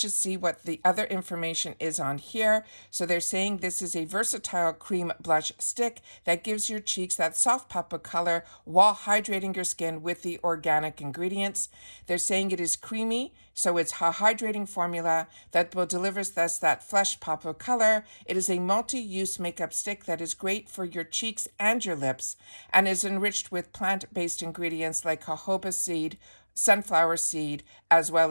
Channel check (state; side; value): inverted; both; correlation -1.00